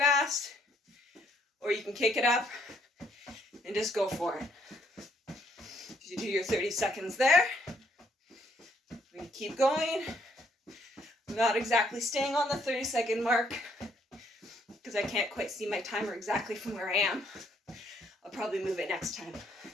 Or you can kick it up and just go for it. You do your 30 seconds there. We're going to keep going. I'm not exactly staying on the 30-second mark because I can't quite see my timer exactly from where I am. I'll probably move it next time.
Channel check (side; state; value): both; normal; correlation 0.69